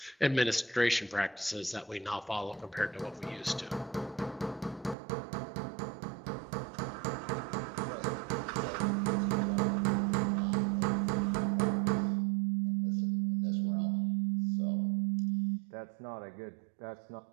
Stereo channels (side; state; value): left; drops out; at 5.0 s